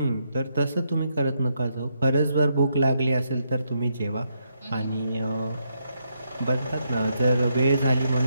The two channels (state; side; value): inverted; both; correlation -0.79